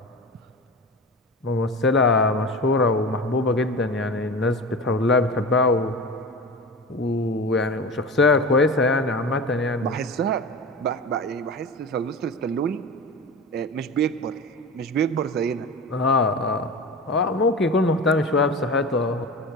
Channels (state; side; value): normal; both; correlation 0.30